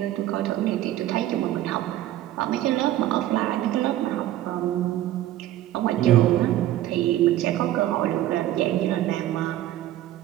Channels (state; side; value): quieter; left; 13.7 dB